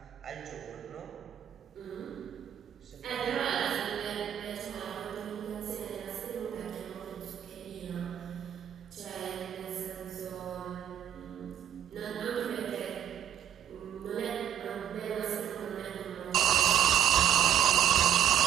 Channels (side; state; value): left; quieter; 10.1 dB